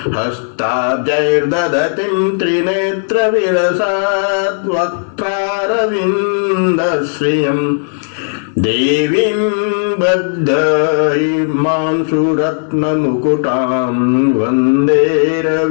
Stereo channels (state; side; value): silent; right; digital silence